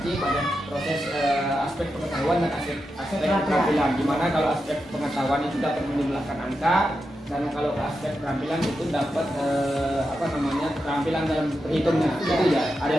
pada proses aspek pengetahuan dan aspek keterampilan. Dimana kalau aspek pengetahuan itu dapat menjumlahkan angka, dan kalau aspek keterampilan itu dapat keterampilan dalam berhitungnya. Itu ya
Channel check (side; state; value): both; normal; correlation 0.88